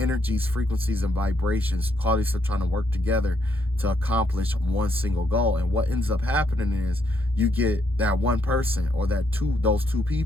frequencies, and vibrations. Qualities are trying to work together to accomplish one single goal. And what ends up happening is you get that one person or those two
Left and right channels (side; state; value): both; normal; correlation 0.74